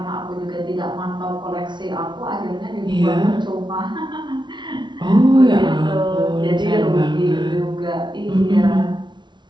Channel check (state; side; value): late; left; 0.22 ms